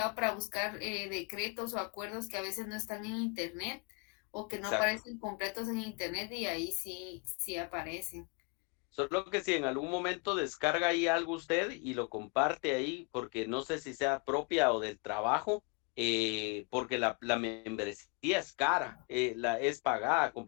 para buscar decretos o acuerdos que a veces no están en internet o que no aparecen completos en internet y ahí sí aparecen. Solo que si en algún momento descarga ahí algo usted y lo comparte ahí, porque no sé si sea propia o del trabajo, porque la membresía es cara, es pagada,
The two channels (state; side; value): quieter; right; 31.2 dB